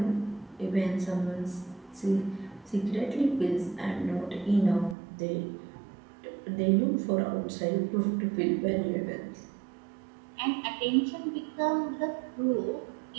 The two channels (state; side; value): drops out; left; at 5.0 s